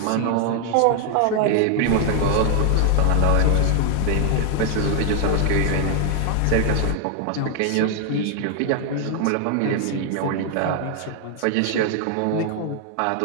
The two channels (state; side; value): different; both; correlation 0.00